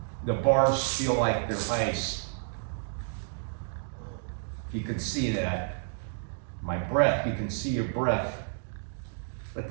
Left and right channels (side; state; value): left; silent; digital silence